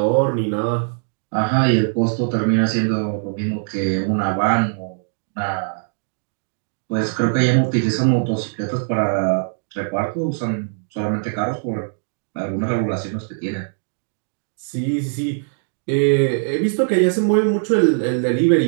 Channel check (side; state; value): left; silent; digital silence